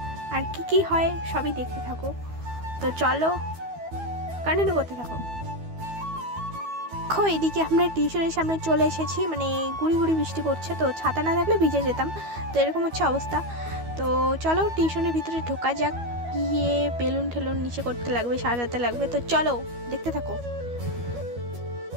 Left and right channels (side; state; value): left; late; 12 ms